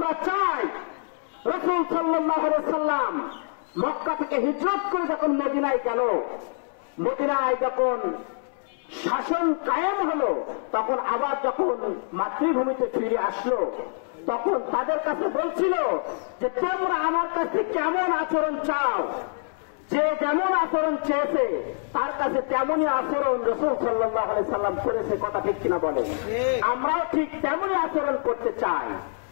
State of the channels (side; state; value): right; silent; 61 dB below the other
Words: চাই রাসূল সাল্লাল্লাহু আলাইহি সাল্লাম মক্কা থেকে হিজরত করে যখন মদিনায় গেল, মদিনায় যখন শাসন কায়েম হলো, তখন আবার যখন মাতৃভূমিতে ফিরে আসলো, তখন তাদের কাছে বলছিল যে তোমরা আমার কাছে কেমন আচরণ চাও, যে যেমন আচরণ চেয়েছে তার কাছে তেমনই আচরণ রাসূল সাল্লাল্লাহু আলাইহি সাল্লাম করেছে। কথা ঠিক কিনা বলেন? আমরাও ঠিক তেমনই আচরণ করতে চাই,